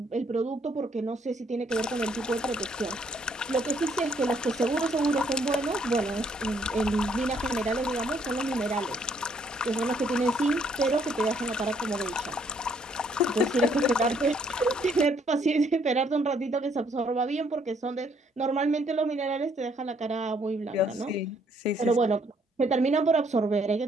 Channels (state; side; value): normal; both; correlation 0.67